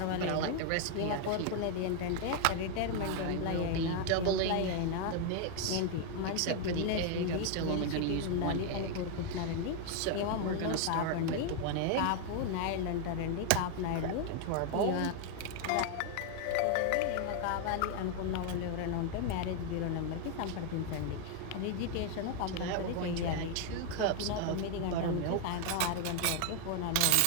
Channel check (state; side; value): different; both; correlation 0.00